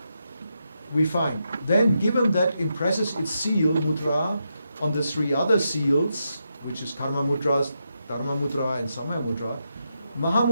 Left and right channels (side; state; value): both; inverted; correlation -0.84